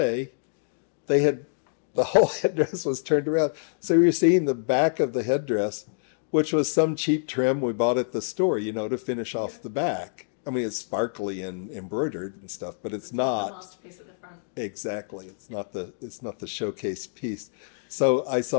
the whole headdress was turned around. So you're seeing the back of the headdress, which was some cheap trim we bought at the store, you know, to finish off the back. I mean, it's sparkly and embroidered and stuff, but it's not the masterpiece at the front. Exactly, it's not the showcase piece. So I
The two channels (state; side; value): silent; right; digital silence